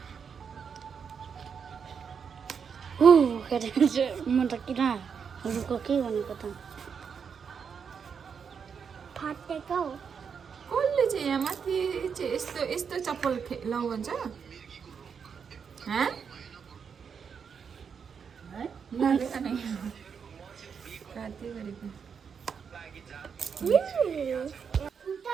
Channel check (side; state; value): left; quieter; 6.6 dB